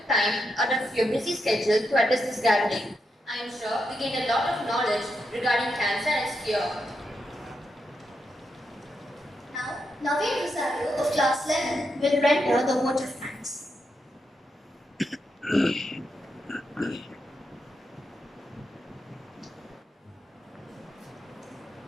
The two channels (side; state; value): both; normal; correlation 0.83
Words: time out of your busy schedule to address this gathering. I am sure we gained a lot of knowledge regarding cancer and its cure. Now, Naveen Rosario of class 11 will render the vote of thanks.